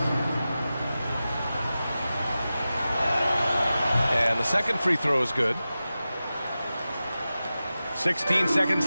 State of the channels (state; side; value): inverted; both; correlation -0.94